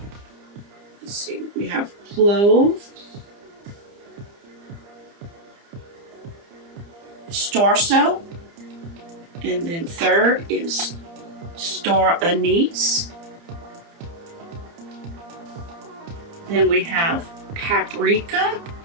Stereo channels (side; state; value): left; late; 30 ms